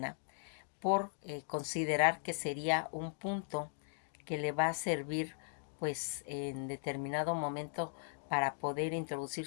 por considerar que sería un punto que le va a servir pues en determinado momento para poder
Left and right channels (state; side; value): silent; right; digital silence